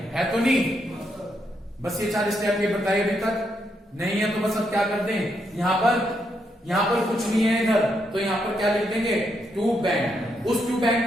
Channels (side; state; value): both; normal; correlation 0.79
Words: तो नहीं। बस ये 4 स्टेप ये बताइए अभी तक नहीं है तो बस अब क्या कर दें, यहां पर कुछ नहीं है इधर, तो यहां पर क्या लिख देंगे? To bank. उस टू बैंक